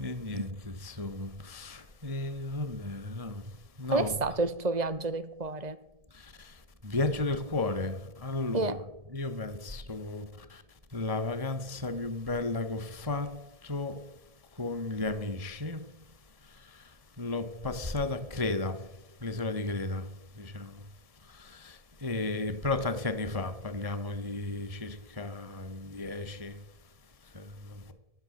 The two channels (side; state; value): left; late; 1.7 ms